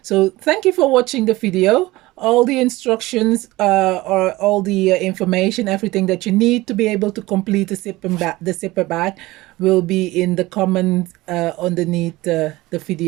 So thank you for watching the video. All the instructions or all the information, everything that you need to be able to complete the zipper bag will be in the comments underneath the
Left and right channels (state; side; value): quieter; left; 19.4 dB